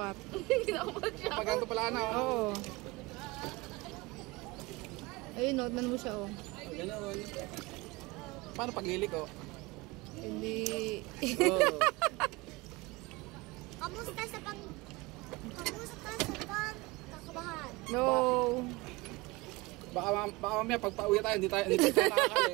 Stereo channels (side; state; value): left; quieter; 23.3 dB